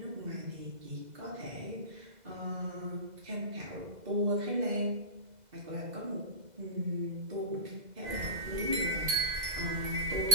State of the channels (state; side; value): late; left; 2.0 ms